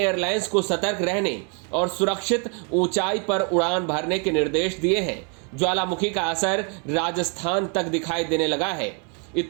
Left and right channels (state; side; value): quieter; left; 36.6 dB